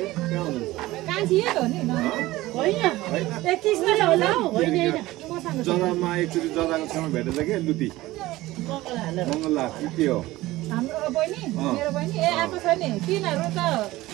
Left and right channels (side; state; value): left; quieter; 17.8 dB